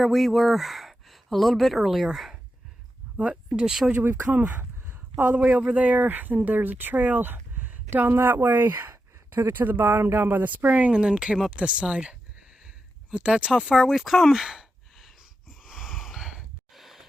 we were a little bit earlier. But I just showed you we've come all the way over there, and there's a trail down that way. Took it to the bottom down by the spring and then came up this side. But that's how far we've come.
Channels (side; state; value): both; normal; correlation 0.88